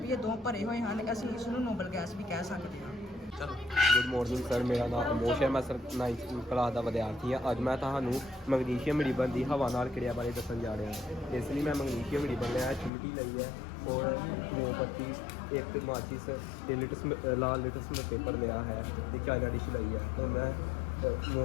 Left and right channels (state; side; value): drops out; right; at 12.9 s